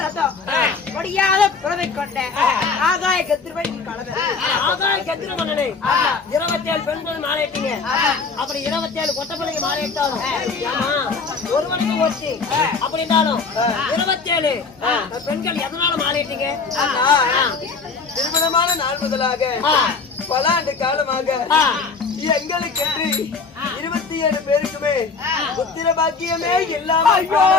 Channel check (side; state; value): right; quieter; 4.7 dB